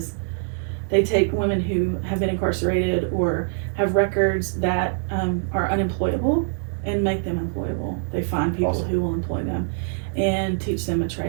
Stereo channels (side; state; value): left; silent; digital silence